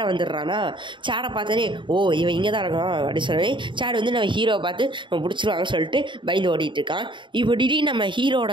வந்துடுறானா. சேடை பார்த்தோன்னே இவன் இங்கே தான் இருக்கான் அப்படின்னு சொல்லி சேடு வந்து நம்ம ஹீரோவை பார்த்து நம்ம பிடிச்சிருவாங்கன்னு சொல்லிட்டு பயந்து ஓடிட்டுருக்கான். இப்போ திடீர்னு நம்ம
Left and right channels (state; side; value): late; left; 0.23 ms